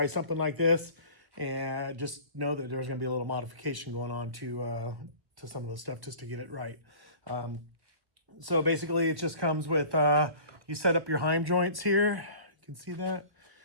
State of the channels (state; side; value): late; left; 1.5 ms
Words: something like this, and just know that there's going to be a little modification going on to some of the stuff just to get it right. So basically it just comes with, you set up your Heim joints here. You can see that.